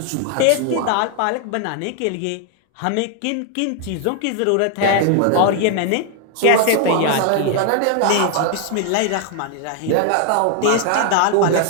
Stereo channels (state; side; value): different; both; correlation 0.00